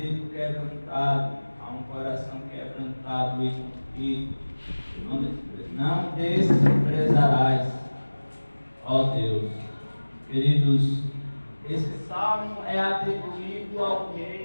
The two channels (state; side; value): inverted; both; correlation -1.00